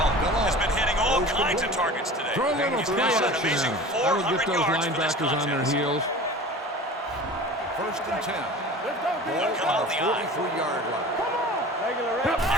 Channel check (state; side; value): normal; both; correlation 0.38